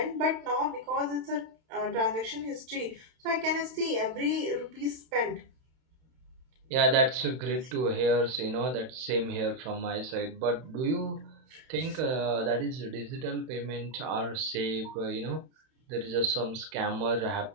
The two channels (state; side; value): late; left; 31 ms